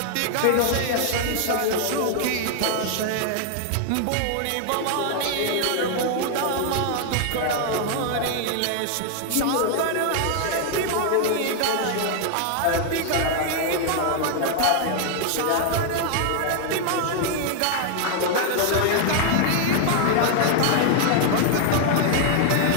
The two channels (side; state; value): both; different; correlation 0.00